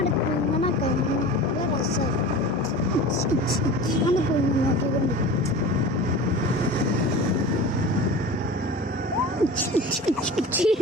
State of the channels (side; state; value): both; normal; correlation 0.34